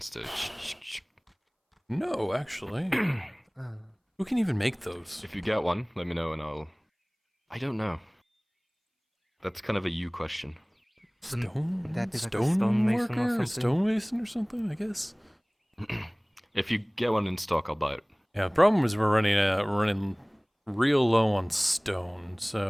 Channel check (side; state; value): both; identical; correlation 1.00